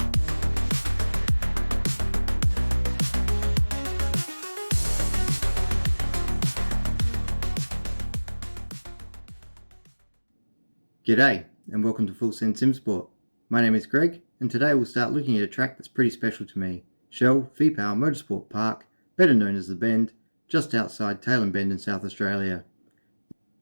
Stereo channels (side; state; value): both; inverted; correlation -1.00